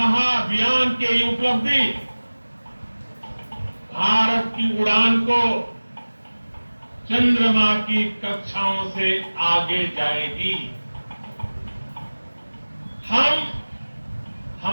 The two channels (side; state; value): both; inverted; correlation -1.00